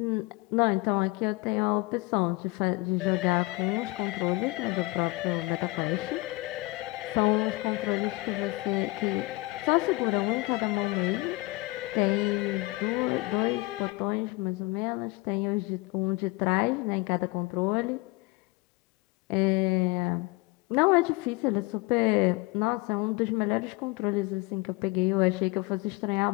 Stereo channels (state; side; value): quieter; right; 22.8 dB